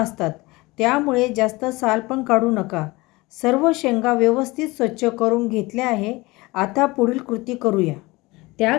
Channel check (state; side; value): quieter; right; 22.2 dB